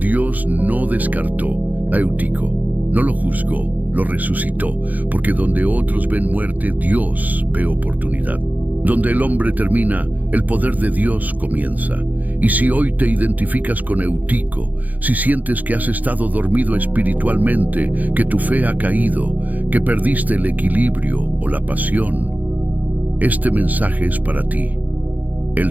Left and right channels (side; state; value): left; late; 0.080 ms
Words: no descartó a Eutico, no lo juzgó, lo resucitó, porque donde otros ven muerte, Dios ve oportunidad. Donde el hombre termina, el poder de Dios comienza. Y si hoy te identificas con Eutico, si sientes que has estado dormido espiritualmente, que tu fe ha caído, que perdiste el equilibrio o la pasión, este mensaje es para ti.